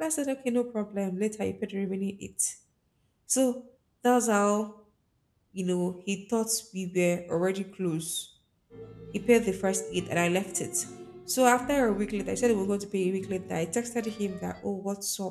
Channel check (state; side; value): identical; both; correlation 1.00